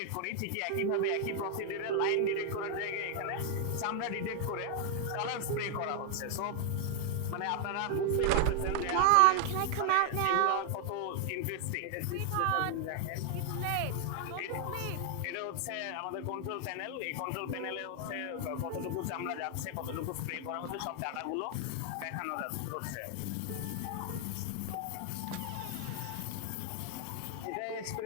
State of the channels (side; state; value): both; different; correlation 0.00